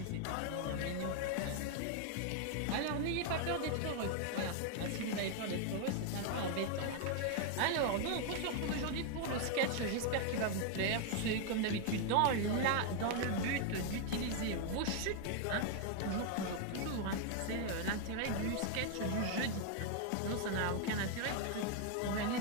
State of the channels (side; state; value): both; different; correlation 0.00